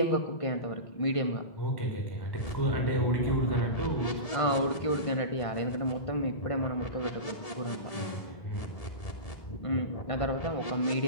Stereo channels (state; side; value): late; right; 1.7 ms